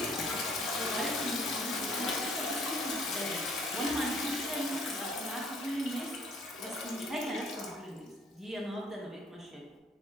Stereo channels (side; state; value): both; normal; correlation 0.59